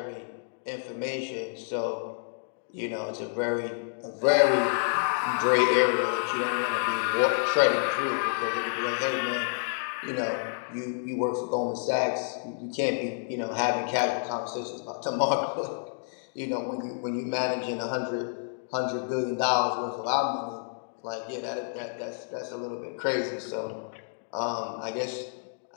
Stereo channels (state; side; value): silent; right; digital silence